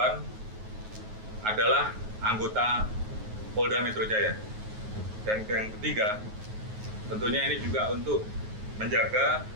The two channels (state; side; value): late; left; 9.4 ms